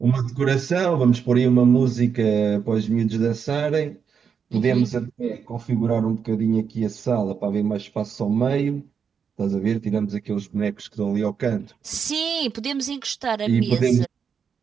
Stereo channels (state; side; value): quieter; left; 6.7 dB